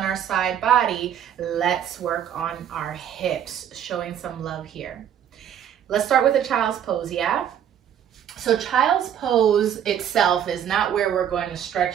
our side body. Let's work on our hips, showing some love here. Let's start with a child's pose, yeah? So child's pose itself is not where we're going to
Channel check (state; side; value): quieter; left; 9.4 dB